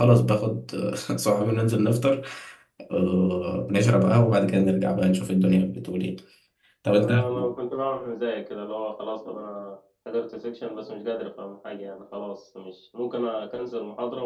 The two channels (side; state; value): both; identical; correlation 1.00